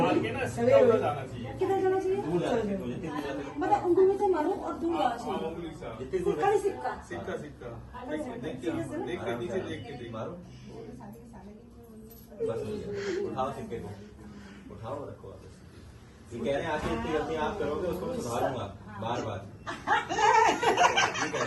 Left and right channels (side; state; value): both; identical; correlation 1.00